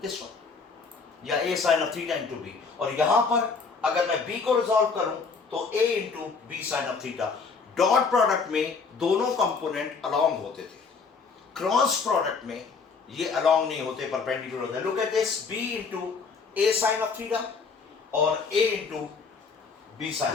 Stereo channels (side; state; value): right; quieter; 4.9 dB